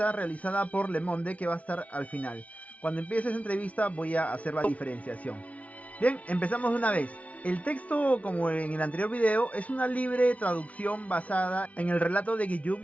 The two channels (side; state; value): right; late; 0.067 ms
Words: realizada por Le Monde que va a estar al final. Cuando empiece esa entrevista voy a hacer la diferenciación. Bien, empezamos de una vez. El texto, como en el anterior video, es una libre traducción basada en el relato de